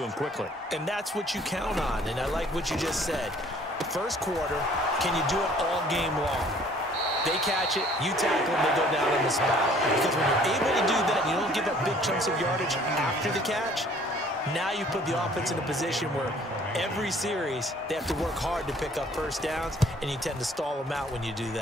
quickly. And that's what you count on, and I like what you just said. First quarter, can you do it all game long? They catch it, you tackle them, they go down on the spot. Because when you're able to do that, you don't give up big chunks of yardage after the catch, now you put the offense in a position where every series, they have to work hard to pick up first downs, and you tend to stall them out when you do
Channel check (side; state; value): both; normal; correlation 0.56